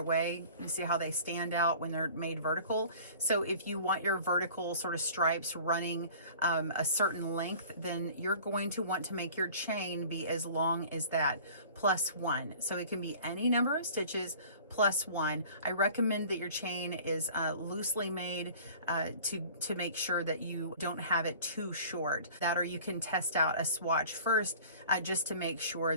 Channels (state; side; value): inverted; both; correlation -0.46